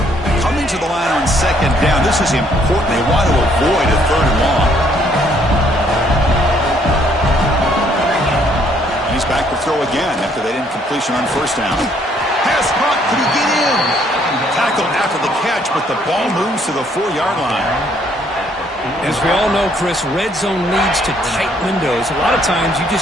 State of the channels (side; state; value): both; normal; correlation 0.66